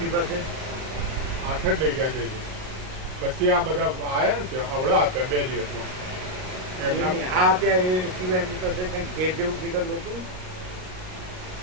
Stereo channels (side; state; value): left; late; 38 ms